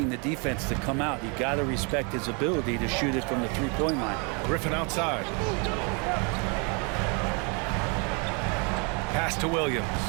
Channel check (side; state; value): left; quieter; 33.8 dB